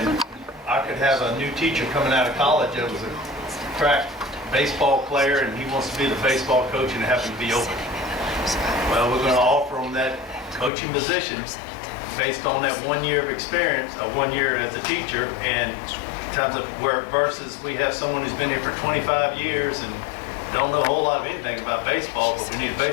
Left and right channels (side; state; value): right; drops out; at 10.7 s